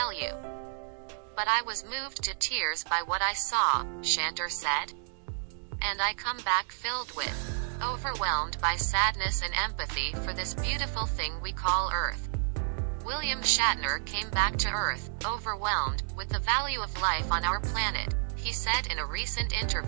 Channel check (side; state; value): left; silent; digital silence